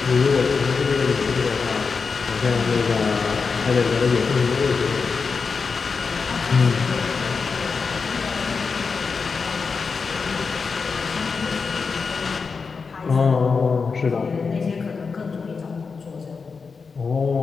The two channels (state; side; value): quieter; right; 5.0 dB